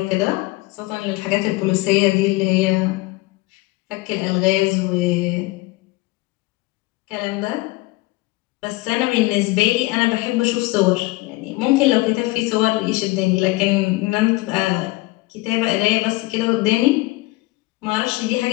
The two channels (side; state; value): right; quieter; 21.3 dB